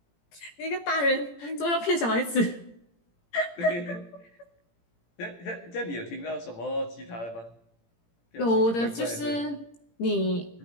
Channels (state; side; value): late; right; 17 ms